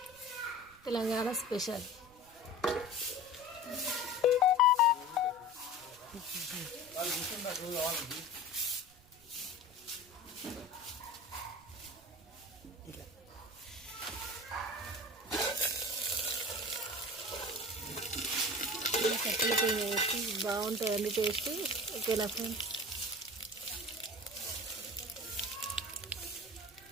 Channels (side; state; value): right; noise; rumble, 26 dB below the sound